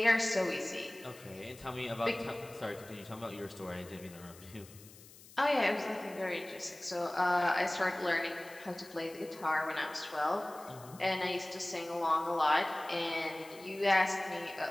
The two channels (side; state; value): left; noise; hiss, 20 dB below the sound